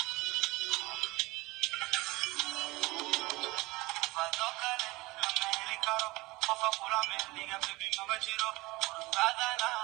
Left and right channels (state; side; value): quieter; left; 21.7 dB